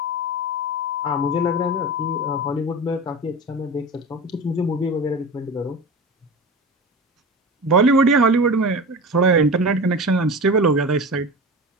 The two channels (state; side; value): normal; both; correlation 0.30